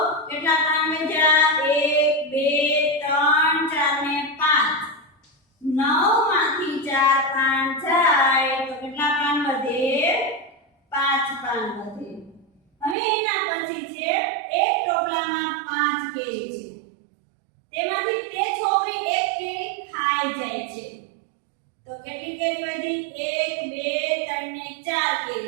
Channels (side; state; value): left; drops out; at 13.0 s